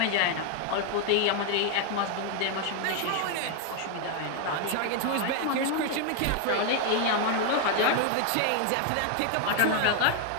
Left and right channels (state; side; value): different; both; correlation 0.01